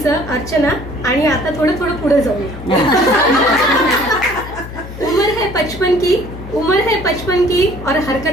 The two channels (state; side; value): noise; left; hum, 12 dB below the sound